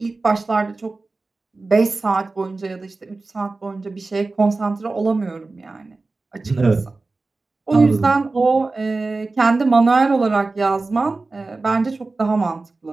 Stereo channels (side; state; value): left; quieter; 3.5 dB